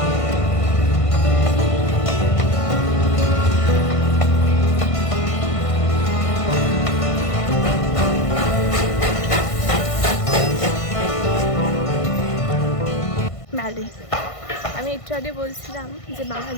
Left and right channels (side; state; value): right; late; 1.5 ms